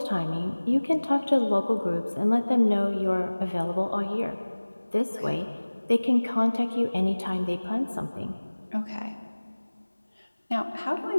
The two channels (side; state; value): both; inverted; correlation -1.00